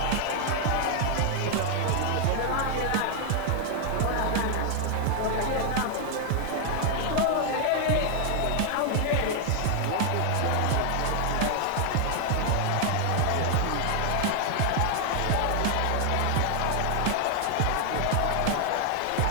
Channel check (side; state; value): both; different; correlation 0.00